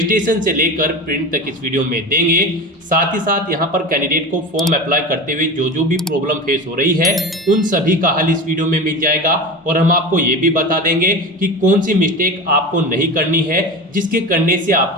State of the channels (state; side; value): normal; both; correlation 0.28